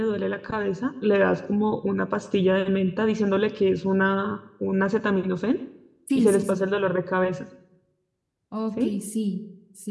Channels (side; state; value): both; identical; correlation 1.00